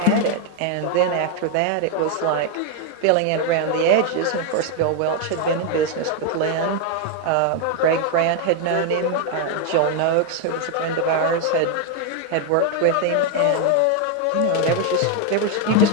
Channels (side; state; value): both; different; correlation 0.01